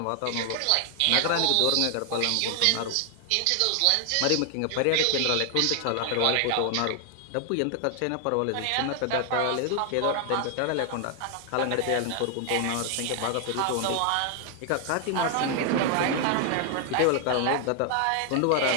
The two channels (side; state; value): both; different; correlation 0.00